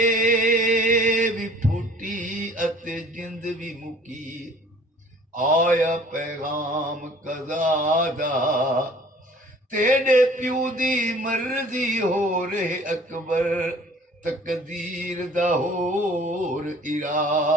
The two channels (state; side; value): normal; both; correlation 0.51